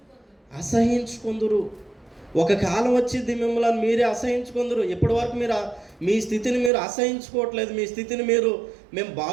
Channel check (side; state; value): left; drops out; at 6.7 s